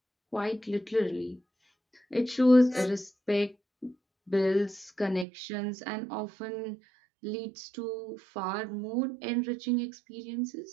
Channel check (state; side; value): drops out; left; at 5.2 s